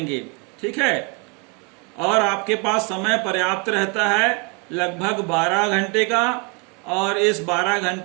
ठीक है, और आपके पास समय पर्याप्त रहता है, लगभग 12 घंटे का, और इस 12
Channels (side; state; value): left; quieter; 32.2 dB